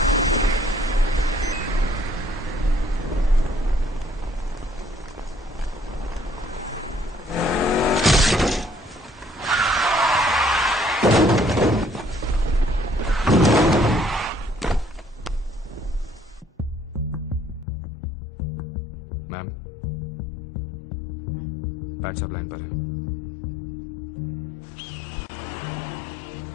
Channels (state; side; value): drops out; right; at 17.7 s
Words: मैम, पैट साहब लाइन पर है।